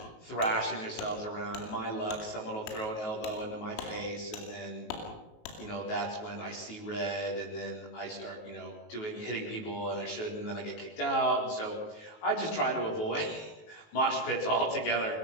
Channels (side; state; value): right; late; 19 ms